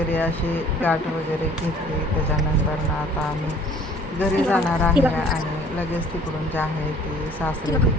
अशी गाठ वगैरे घेतली. त्याच्यानंतर आता आम्ही घरी जाणार आहे आणि लगेच तिकडून जे आहे ती सासरी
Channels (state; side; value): normal; both; correlation 0.52